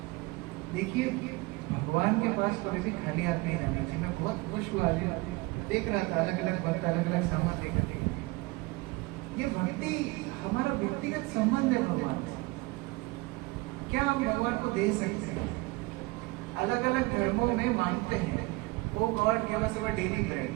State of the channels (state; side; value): quieter; left; 23.1 dB